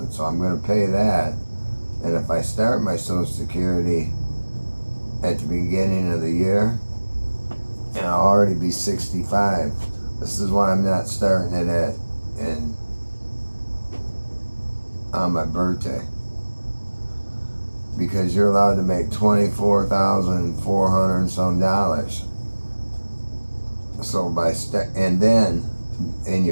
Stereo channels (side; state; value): both; inverted; correlation -1.00